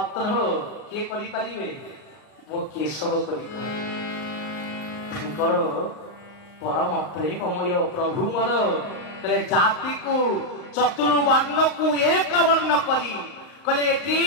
କିଏ କରିପାରିବେ? ମୋ କେଶବ କରିପାରିବେ। ତାଙ୍କର ପରମ ପ୍ରେମମୟ ପ୍ରଭୁ ମୋର କହିଲେ ଜାତିକୁ ଚତୁର୍ବର୍ଣ୍ଣକୁ ଏକ ବର୍ଣ୍ଣ କରି କହିଲେ ଏଠି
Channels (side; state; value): right; late; 38 ms